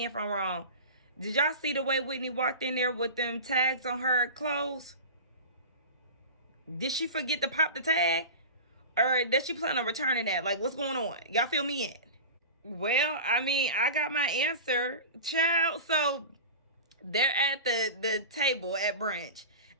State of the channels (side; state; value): both; inverted; correlation -0.31